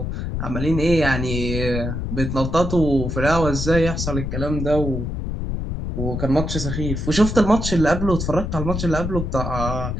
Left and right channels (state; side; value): noise; left; rumble, 3 dB below the sound